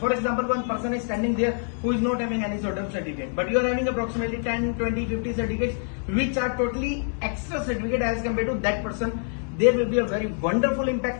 example, one person is standing there who is not having any sort of certificate, but you are having approximately 10, 20, 50 certificates which are totally extra certificate as compared to that person. There will be a very wonderful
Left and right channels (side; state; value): right; silent; 61 dB below the other